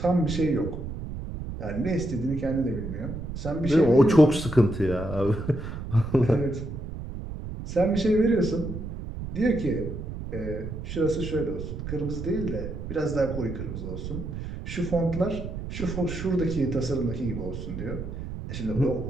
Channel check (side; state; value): right; noise; rumble, 7 dB below the sound